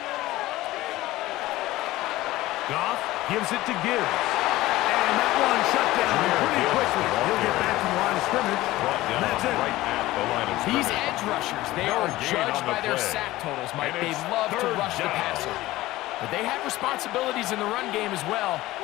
Goff gives it to Gibbs. And that one shut down pretty quickly. He'll get back to the line of scrimmage. That's it. Right at the line of These scrimmage. edge rushers, they No are gain judged on the by their play. sack totals, Mike. And They it's love to 3rd rush the down. passer. But they have responsibilities in the run game as well.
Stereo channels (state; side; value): quieter; right; 17.3 dB